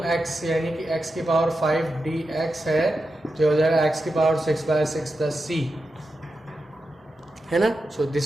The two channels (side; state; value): both; normal; correlation 0.89